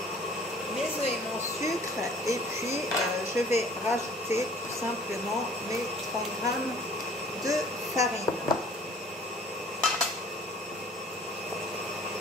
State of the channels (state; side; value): normal; both; correlation 0.52